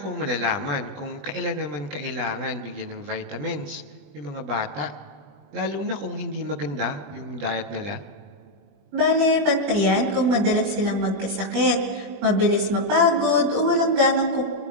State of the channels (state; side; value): late; left; 21 ms